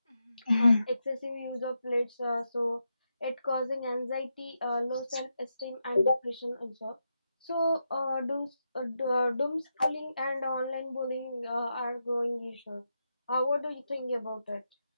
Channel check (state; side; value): inverted; both; correlation -0.86